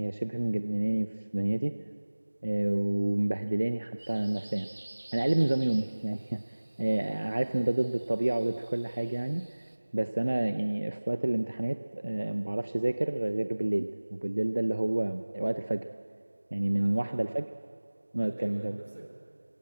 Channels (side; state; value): both; inverted; correlation -1.00